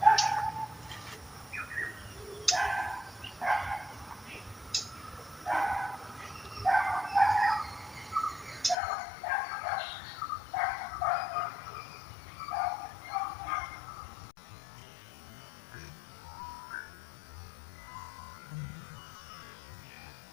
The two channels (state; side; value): drops out; right; at 8.8 s